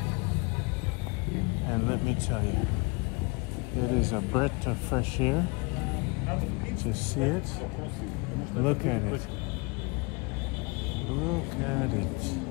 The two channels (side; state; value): right; quieter; 29.4 dB